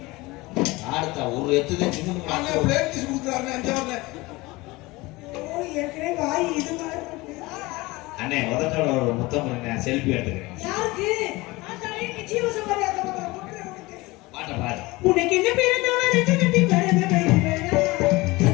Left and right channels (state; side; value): quieter; right; 21.8 dB